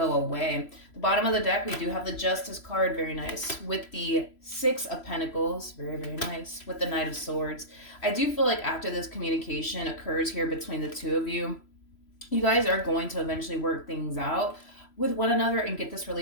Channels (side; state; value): right; late; 3.0 ms